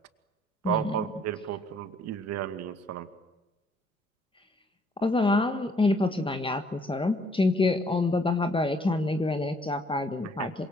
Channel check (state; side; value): normal; both; correlation 0.64